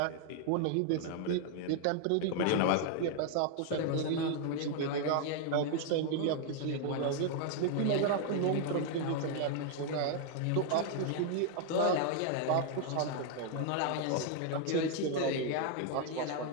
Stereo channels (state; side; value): different; both; correlation 0.00